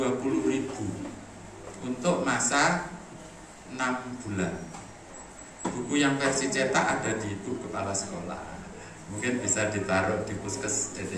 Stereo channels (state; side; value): identical; both; correlation 1.00